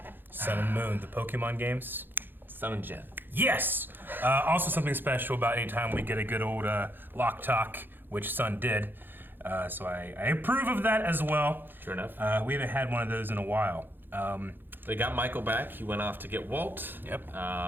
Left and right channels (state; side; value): late; left; 0.096 ms